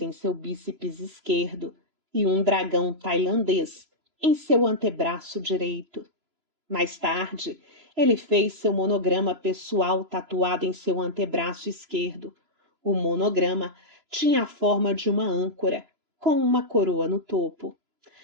em seu bíceps esquerdo e um dragão tailandês em seu antebraço direito. Mais tarde, ele fez seu monograma pessoal tatuado em seu antebraço esquerdo. O monograma tinha a forma de uma âncora, com uma coroa no topo.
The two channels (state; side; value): late; left; 3.0 ms